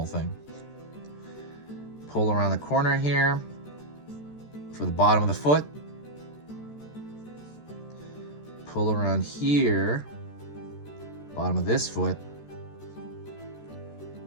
thing. Pull around the corner here for the bottom of the foot. Pull around here. Bottom of this foot.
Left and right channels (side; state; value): right; late; 13 ms